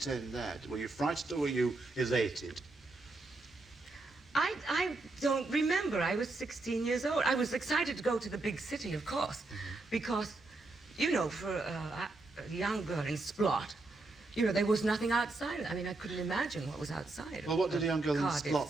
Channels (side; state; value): left; quieter; 3.2 dB